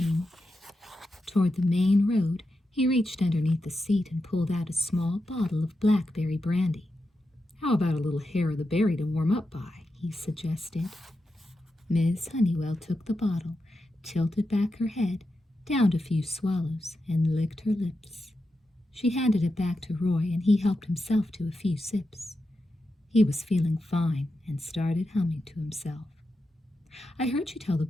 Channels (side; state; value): both; normal; correlation 0.88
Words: toward the main road, he reached underneath the seat and pulled out a small bottle of blackberry brandy. How about a little hair of the berry to warm up by, he suggested. Miss Honeywell took the bottle, tilted back her head, downed a few swallows, and licked her lips. She handed it back to Roy, and he helped himself to a few sips. He was feeling fine and started humming to himself. I heard you tell the